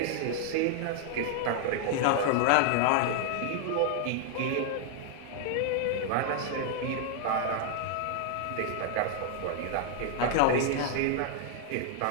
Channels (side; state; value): both; different; correlation 0.00